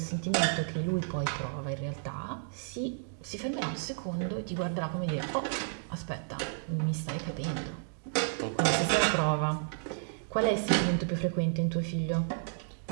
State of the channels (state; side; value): silent; left; digital silence